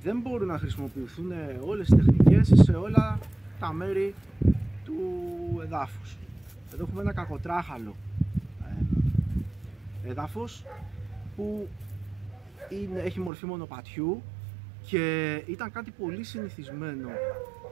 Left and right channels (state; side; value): drops out; left; at 13.3 s